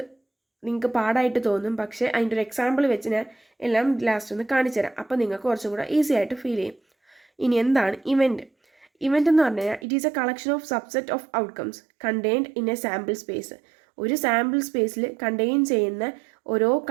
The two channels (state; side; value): drops out; left; at 9.9 s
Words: നിങ്ങൾക്ക് പാടായിട്ട് തോന്നും. പക്ഷേ അതിൻ്റെ ഒരു എക്സാമ്പിൾ വെച്ച് ഞാൻ എല്ലാം ലാസ്റ്റ് ഒന്ന് കാണിച്ചു തരാം. അപ്പോൾ നിങ്ങൾക്ക് കുറച്ചും കൂടെ ഈസി ആയിട്ട് ഫീൽ ചെയ്യും. ഇനി എന്താണ് ഇവൻറ്റ്? ഇവൻറ്റ് എന്ന് പറഞ്ഞു കഴിഞ്ഞാൽ it is A collection of subset of outcomes contained in A sample space. ഒരു സാമ്പിൾ സ്പേസിൽ കണ്ടെയ്ൻ ചെയ്യുന്ന ഓരോ